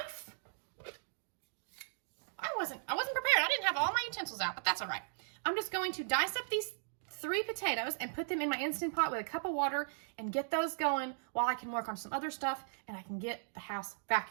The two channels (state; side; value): silent; left; digital silence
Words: I wasn't prepared. I didn't have all my utensils out, but that's all right. I'm just going to dice up these 3 potatoes and put them in my Instant Pot with a cup of water and get those going while I can work on some other stuff and I can get the house